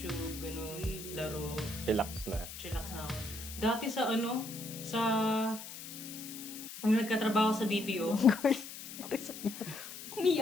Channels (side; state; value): left; noise; hiss, 11 dB below the sound